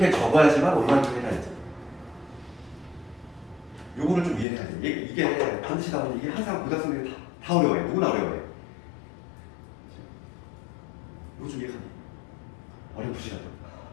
적어야지만 얼마만큼 해야지. 요거를 좀 이해해야 돼. 이게 반드시 나오는 이게 항상 고등학생들이 다 어려워해. 누구나 어려워해. 이거 좀 이해하니? 어렵으시라도.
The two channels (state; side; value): drops out; right; at 4.5 s